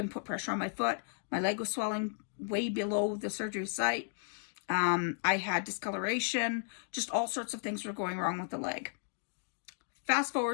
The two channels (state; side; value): silent; right; digital silence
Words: put pressure on my foot. My leg was swelling way below the surgery site. I had discoloration. Just all sorts of things were going wrong with the leg. Fast